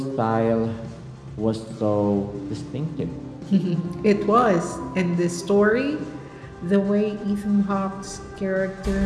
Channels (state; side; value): identical; both; correlation 1.00